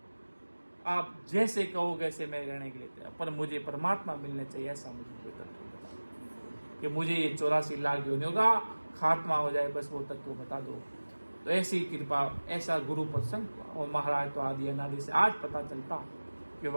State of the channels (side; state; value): both; inverted; correlation -1.00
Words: आप जैसे कहो वैसे मैं रहने के लिए तैयार, पर मुझे परमात्मा मिलने चाहिए। ऐसा मुझे कोई तत्व बता कि मुझे ये 84 लाख योनियों का खात्मा हो जाए, बस वो तत्व बता दो। तो ऐसी कृपा, ऐसा गुरु प्रसंग हुआ। और महाराज तो आदि अनादि से आज पता चलता कि